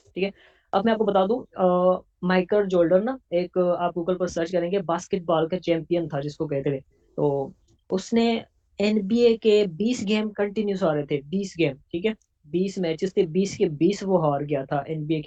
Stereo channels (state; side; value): identical; both; correlation 1.00